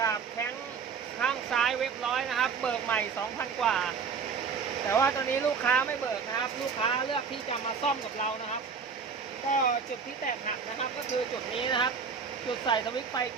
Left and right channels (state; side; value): quieter; left; 5.8 dB